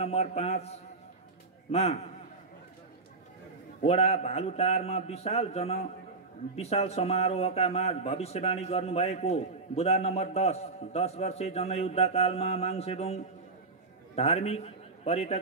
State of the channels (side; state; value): left; quieter; 3.9 dB